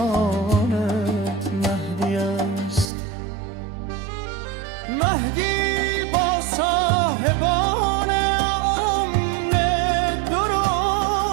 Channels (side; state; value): left; drops out; at 2.9 s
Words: مهدی است. مهدی با صاحبان امن